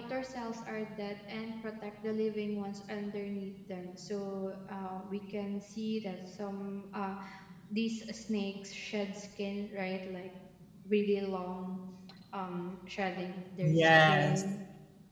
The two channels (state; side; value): identical; both; correlation 1.00